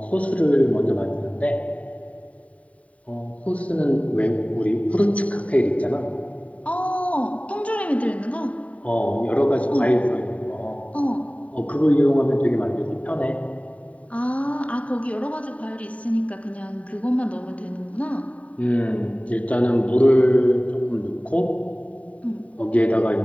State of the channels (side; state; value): right; late; 0.067 ms